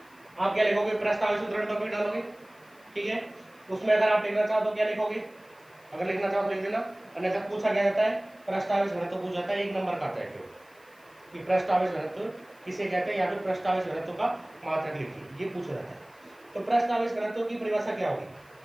आप क्या लिखोगे, पृष्ठ आवेश वितरण टॉपिक डालोगे, ठीक है। उसमें अगर आप लिखना चाहो तो क्या लिखोगे, अगर लिखना चाहो तो लिख देना, अन्यथा पूछा क्या जाता है, पृष्ठ आवेश घनत्व पूछा जाता है, 1 नंबर का आता है कि पृष्ठ आवेश घनत्व किसे कहते हैं, या फिर पृष्ठ आवेश घनत्व का मात्रक लिखिए, ये पूछा जाता है। तो पृष्ठ आवेश घनत्व की परिभाषा क्या होगी,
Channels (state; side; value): noise; left; hiss, 30 dB below the sound